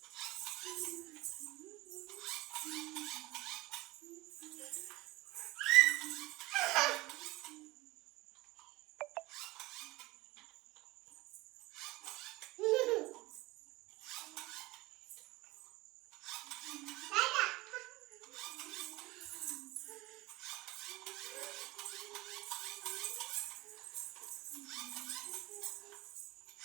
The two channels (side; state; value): left; quieter; 20.7 dB